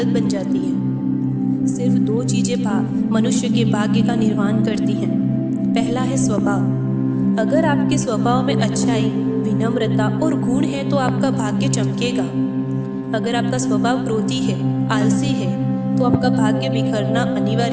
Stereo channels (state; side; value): identical; both; correlation 1.00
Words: बन जाती है। सिर्फ दो चीजें मनुष्य के भाग्य का निर्माण करती हैं। पहला है स्वभाव। अगर आपके स्वभाव में अच्छाई, विनम्रता और गुण है तो आपका भाग्य चमकेगा। अगर आपका स्वभाव क्रोधी है, आलसी है, तो आपका भाग्य बिखरना